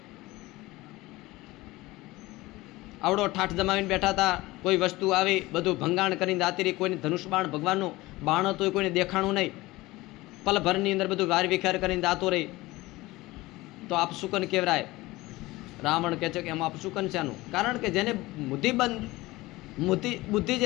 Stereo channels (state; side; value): quieter; right; 19.7 dB